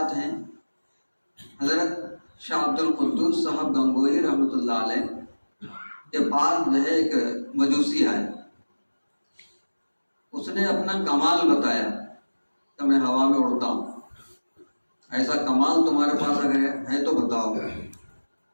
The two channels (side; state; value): both; inverted; correlation -1.00